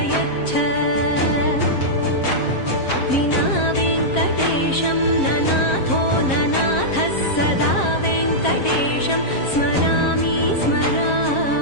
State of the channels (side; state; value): right; late; 7.5 ms